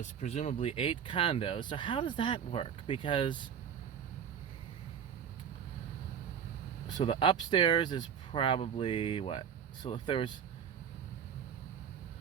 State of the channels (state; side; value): quieter; left; 8.0 dB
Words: presumably 8 condos. So how does that work? Because so the upstairs is probably what? So if there was